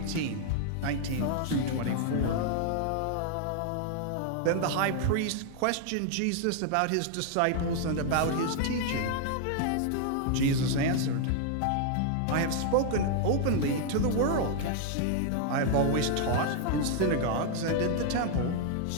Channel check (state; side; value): different; both; correlation 0.00